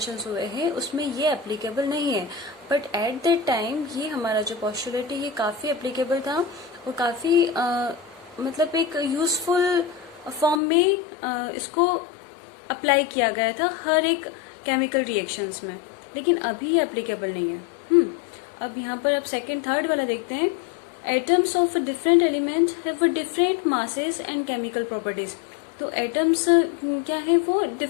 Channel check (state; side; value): drops out; right; at 10.6 s